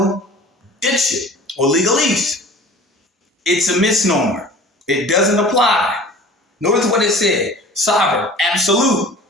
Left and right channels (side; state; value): both; normal; correlation 0.43